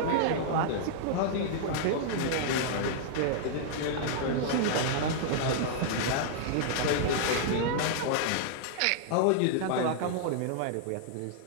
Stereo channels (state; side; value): different; both; correlation -0.01